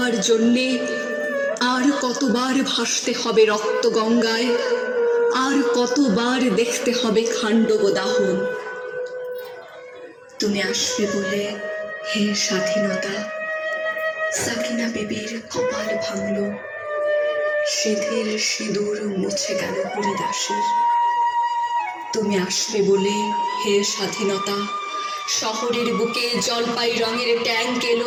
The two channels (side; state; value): both; identical; correlation 1.00